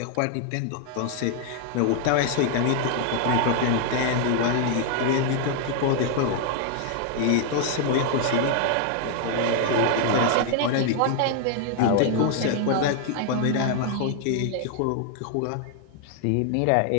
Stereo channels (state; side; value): different; both; correlation 0.00